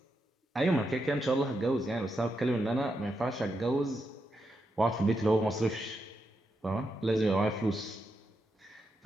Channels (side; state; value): both; normal; correlation 0.84